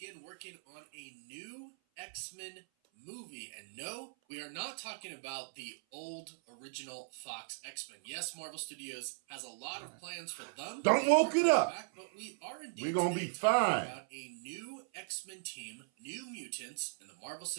working on a new X-Men movie. And no, we are not talking about the old original Fox X-Men. Yes, Marvel Studios has a lot of plans for them. Don't woke it up. But we are indeed We're gonna be fine. about a new X-Men team, new mutants in the Marvel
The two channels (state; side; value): silent; left; 52 dB below the other